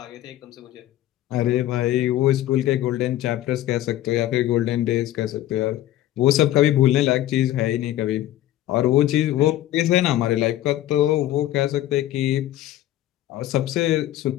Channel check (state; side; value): quieter; right; 13.7 dB